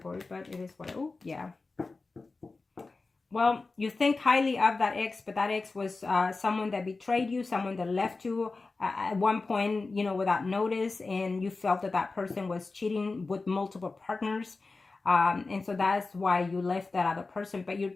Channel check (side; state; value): right; quieter; 3.8 dB